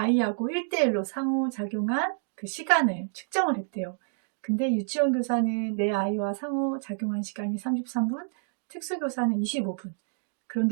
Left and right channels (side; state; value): left; silent; digital silence